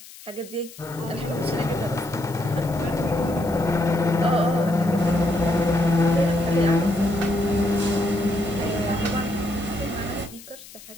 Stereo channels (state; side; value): noise; left; hiss, 18 dB below the sound